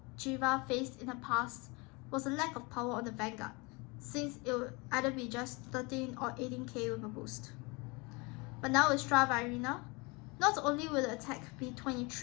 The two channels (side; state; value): right; quieter; 27.7 dB